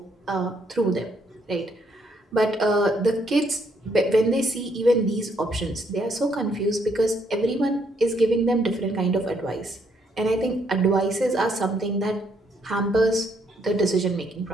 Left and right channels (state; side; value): normal; both; correlation 0.71